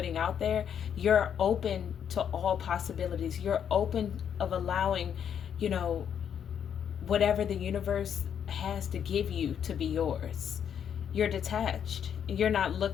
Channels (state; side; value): quieter; right; 8.5 dB